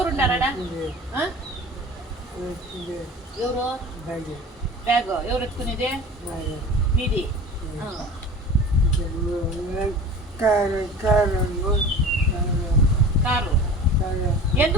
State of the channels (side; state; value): both; normal; correlation 0.38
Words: ఎవరు బ్యాగ్ ఎవరు ఎత్తుకునేది? మీది కారు.